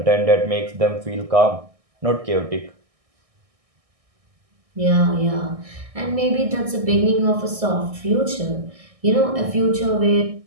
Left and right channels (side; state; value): left; late; 1.6 ms